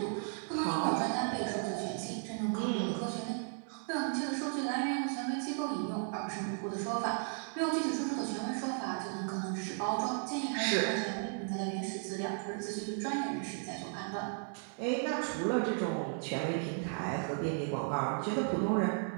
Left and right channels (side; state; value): left; silent; 54 dB below the other